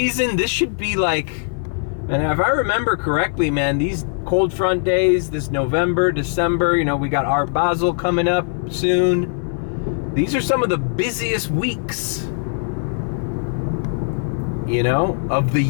This should be like, and if I remember correctly, man, these cold front days, this November, December, we got Art Basel coming up soon. These are some of the busiest weeks, of the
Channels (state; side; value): silent; right; 63 dB below the other